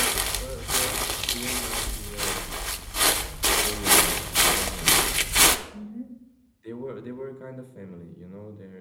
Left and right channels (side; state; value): both; identical; correlation 1.00